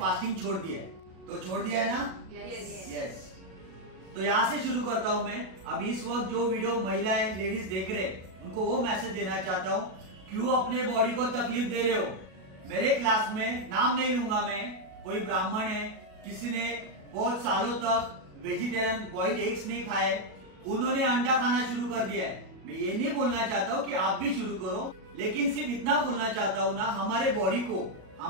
छोड़ दिया है। तो छोड़ दिया है ना? यस। तो यहाँ से शुरू करता हूँ मैं। अभी इस वक्त जो वीडियो महिलाएं लेडीज देख रहे, उनको वो मैसेज देना चाहता हूँ, क्यों अपने बॉडी को तकलीफ दे रहे हो। मेरे क्लास में, नाम नहीं लूंगा मैं, कोई ब्राह्मण है, किसी ने बहुत सालों तक वेजिटेरियन बॉइल्ड एग्स नहीं खाए, उन्होंने अंडा खाना शुरू कर दिया है। मैं ये नहीं बोलना चाहता हूँ कि आप भी शुरू करो, लेकिन सिर्फ इतना बोलना चाहता हूँ ना, हमारे बॉडी को,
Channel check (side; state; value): left; late; 37 ms